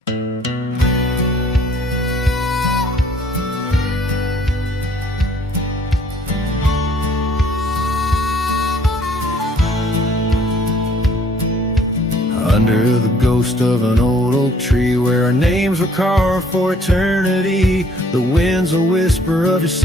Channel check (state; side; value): normal; both; correlation 0.59